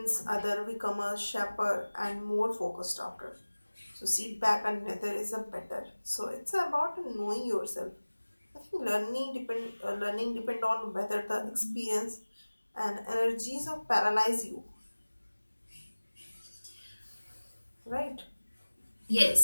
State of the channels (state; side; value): inverted; both; correlation -1.00